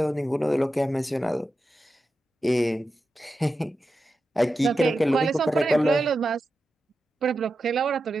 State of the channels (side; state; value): both; normal; correlation 0.91